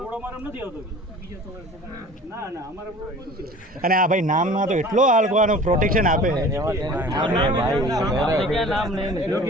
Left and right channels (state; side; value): normal; both; correlation 0.44